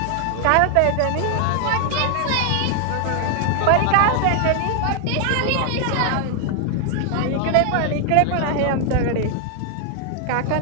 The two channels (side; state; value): both; different; correlation 0.00